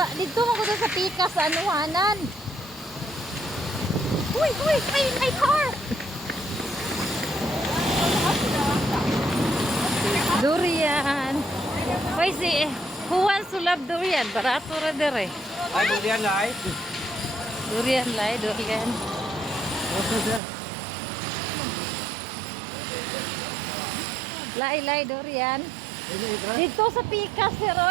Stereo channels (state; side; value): drops out; left; at 20.4 s